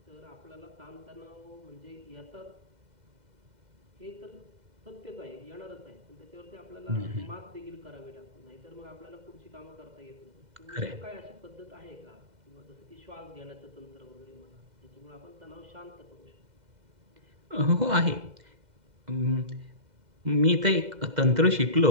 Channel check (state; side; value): late; left; 2.0 ms